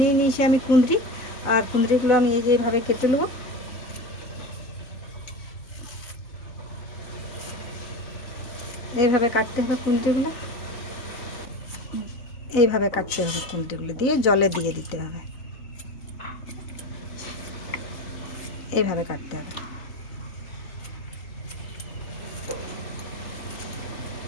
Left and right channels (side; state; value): right; late; 4.0 ms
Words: নিয়েছি আমি কুঁদরি, আর কুঁদরিগুলো আমি এই যে এইভাবে কেটে নেব। এইভাবে কাটতে হবে কুঁদরিগুলো, এইভাবে কাটতে হবে কুঁদরিগুলো, দিয়ে জলে দিয়ে দিতে হবে, এইভাবে কাটতে হবে।